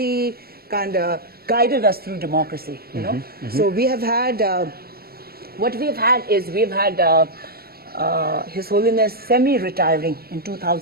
kind of guided us through democracy, So we have had, we've had His Holiness semi-retiring in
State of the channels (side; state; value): left; late; 0.44 ms